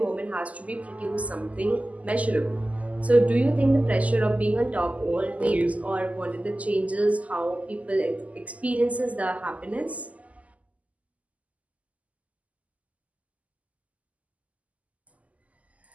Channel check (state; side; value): late; left; 0.072 ms